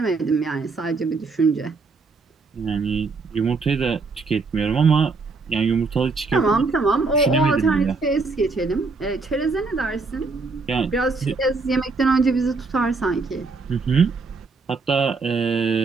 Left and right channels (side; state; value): left; quieter; 4.1 dB